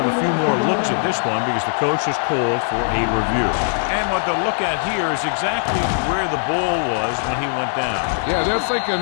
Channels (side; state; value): right; silent; 63 dB below the other